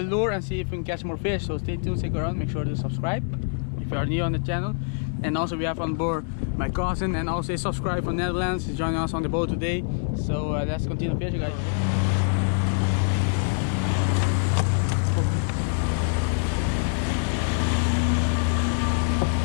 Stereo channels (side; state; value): right; silent; 61 dB below the other